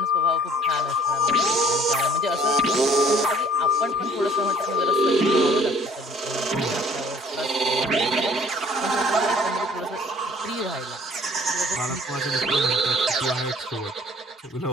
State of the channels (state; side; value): normal; both; correlation 0.56